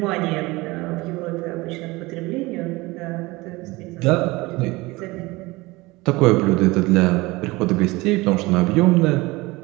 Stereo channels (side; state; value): left; quieter; 21.8 dB